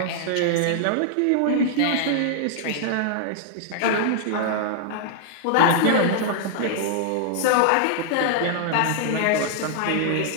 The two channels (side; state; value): both; different; correlation 0.00